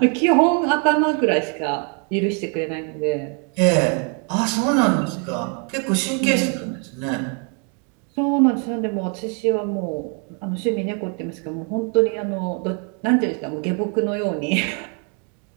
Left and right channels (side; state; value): left; quieter; 38.6 dB